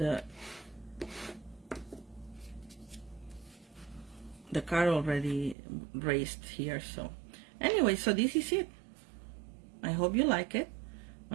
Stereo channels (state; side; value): drops out; left; at 5.6 s